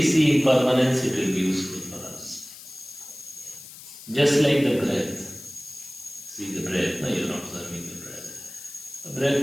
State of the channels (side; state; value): left; noise; hiss, 16 dB below the sound